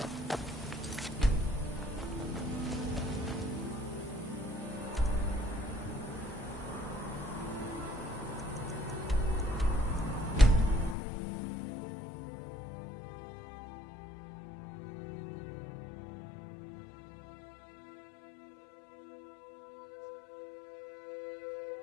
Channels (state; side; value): drops out; right; at 11.0 s